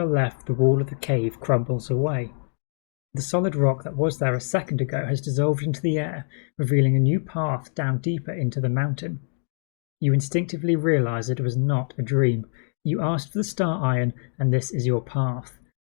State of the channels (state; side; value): silent; right; digital silence